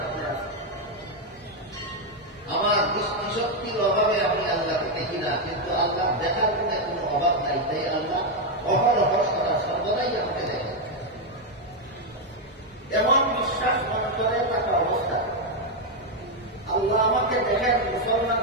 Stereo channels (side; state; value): both; normal; correlation 0.03